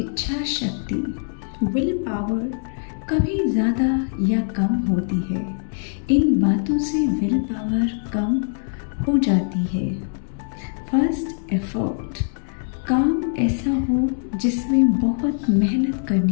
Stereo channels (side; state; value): right; silent; digital silence